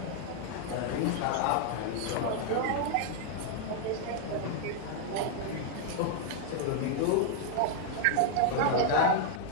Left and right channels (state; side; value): different; both; correlation 0.00